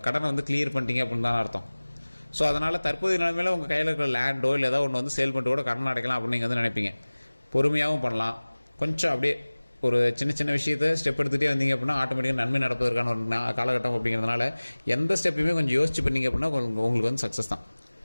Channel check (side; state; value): both; inverted; correlation -1.00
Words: கடனை வந்து கிளியர் பண்ணிட்டீங்க அப்படின்னு தான் அர்த்தம். ஸோ அதனால் தற்போதைய நிலைமையில் உங்கள் கையில் இருக்கிற லேண்டோ இல்லை ஏதோ ஒன்று வந்து சேல் பண்ணிட்டு கூட கடன் அடைக்கலாம் அப்படின்னு நீங்கள் வந்து நினைப்பீங்க. பொறுமையாகவும் பண்ணலாம். கொஞ்சம் அப்படியே ஒரு சின்ன சின்ன விஷயத்தை ஸ்டெப் எடுத்துகிட்டே வந்தீங்க அப்படின்னா ஆட்டோமேட்டிக்காக நன்மை நடப்பதற்கான ஒரு காலகட்டம் அப்படிங்கிறதுனால எந்த ஸ்டெப்பையுமே கொஞ்சம் யோசிச்சு பண்ணீங்க அப்படின்னா உங்களுக்கு வந்து சக்ஸஸ் தான்.